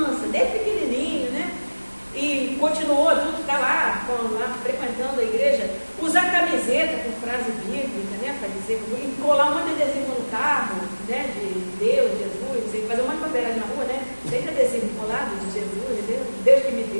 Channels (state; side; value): inverted; both; correlation -1.00